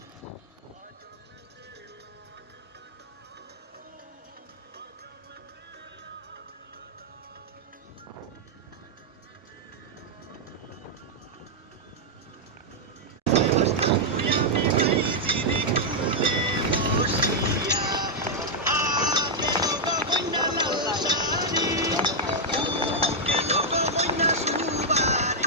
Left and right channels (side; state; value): both; normal; correlation -0.04